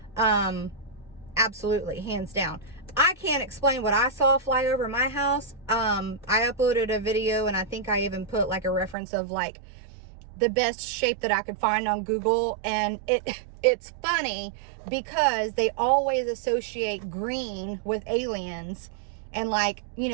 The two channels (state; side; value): drops out; left; at 9.0 s